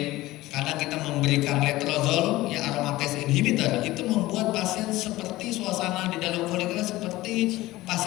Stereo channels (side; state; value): right; quieter; 17.9 dB